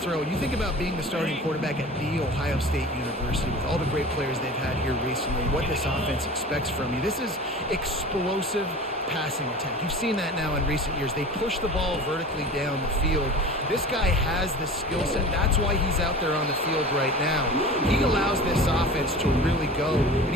You think about being the starting quarterback at The Ohio State University with all the great players they've had here recently, what this offense expects from you. This is explosive passing attack. You've seen that now in recent years. They push the ball vertically down the field. This guy has the skill set. That's why he's out there on the field right now. He allows this offense to really go, and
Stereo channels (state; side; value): normal; both; correlation 0.37